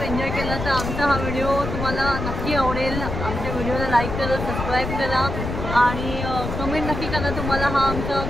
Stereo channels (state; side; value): noise; left; rumble, 4 dB below the sound